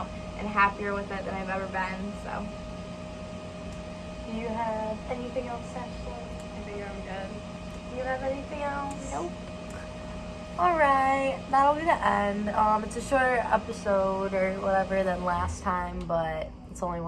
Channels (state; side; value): identical; both; correlation 1.00